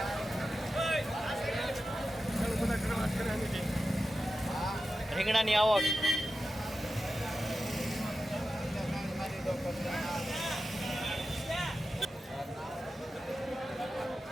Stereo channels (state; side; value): normal; both; correlation 0.92